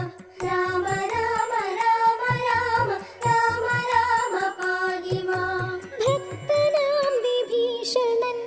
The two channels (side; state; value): both; identical; correlation 1.00